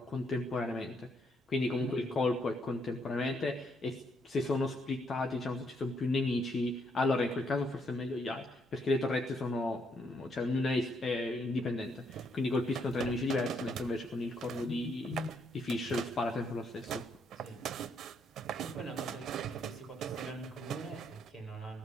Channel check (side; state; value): both; normal; correlation 0.73